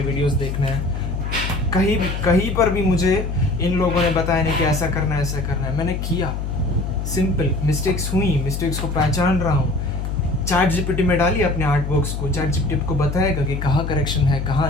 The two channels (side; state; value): left; noise; hum, 4 dB below the sound